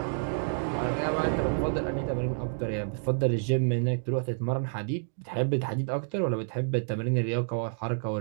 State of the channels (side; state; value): left; silent; digital silence